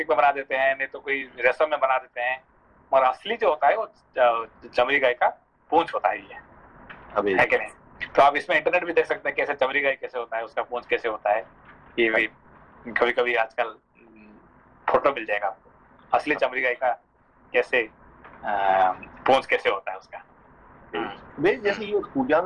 में बना देते हैं, नहीं तो कोई रेशम में बना देते हैं, और असली जो होता है वो चमड़ी गाय का पूंछ होता है, ये है कि नहीं? तो आप इसमें इंटरनेट भी देख सकते हैं कैसे चमड़ी गाय कैसे होता है, उसका पूंछ कैसे होता है। ये भी कभी आजकल फोटो मिल जाएगा आपको, असली चमड़ी गाय का कैसे पूंछ कैसे होता है उसका। वे जैसे ये पूजा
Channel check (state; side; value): identical; both; correlation 1.00